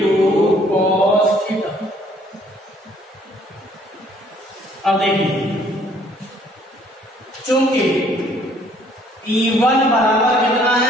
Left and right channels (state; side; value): normal; both; correlation 0.61